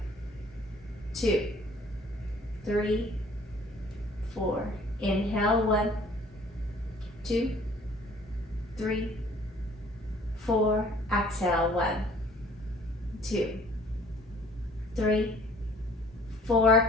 2, 3, 4. Inhale, 1, 2, 3, 4. Exhale, 1, 2, 3, 4,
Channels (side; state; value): both; normal; correlation 0.55